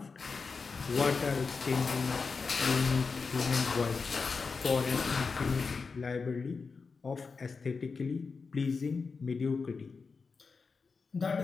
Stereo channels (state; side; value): quieter; right; 4.8 dB